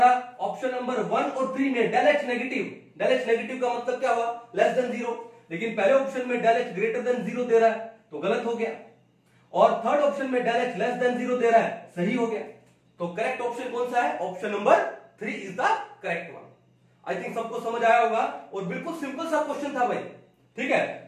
ऑप्शन नंबर 1 और 3 में del H negative. Del H negative का मतलब क्या हुआ, लेस देन 0। लेकिन पहले ऑप्शन में डेल एच ग्रेटर देन 0 दे रहा है तो गलत हो गया, और थर्ड ऑप्शन में डेल एच लेस देन 0 दे रहा है, सही हो गया। तो करेक्ट ऑप्शन कौन सा है, option number 3 is the correct one. I think सबको समझ आया होगा, और बिल्कुल सिंपल सा क्वेश्चन था भाई। ठीक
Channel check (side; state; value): both; identical; correlation 1.00